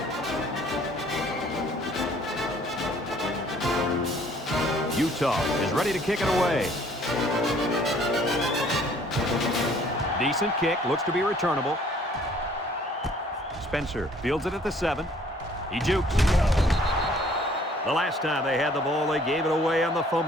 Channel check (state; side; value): normal; both; correlation 0.58